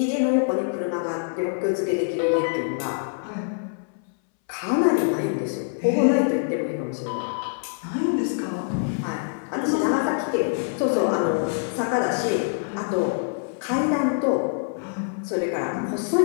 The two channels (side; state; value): right; silent; 62 dB below the other